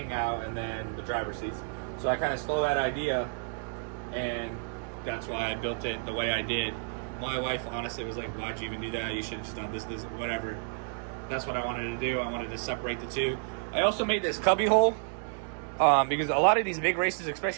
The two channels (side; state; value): left; silent; digital silence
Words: and then the driver's seats. So I kind of stole that idea, and that's why I built it the way I did. My wife honestly was like, "Why'd you even do that? You should have just done this, whatever." That's what I wanted to do. I wanted to separate the two. I also made this cubby hole because a lot of these big races,